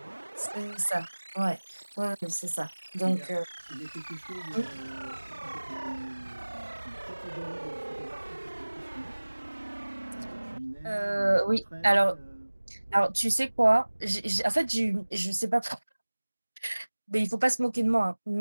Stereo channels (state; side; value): inverted; both; correlation -1.00